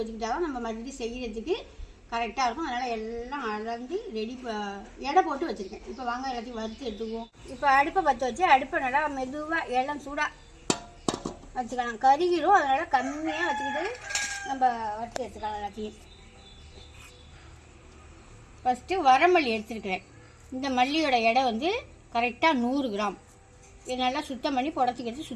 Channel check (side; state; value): both; identical; correlation 1.00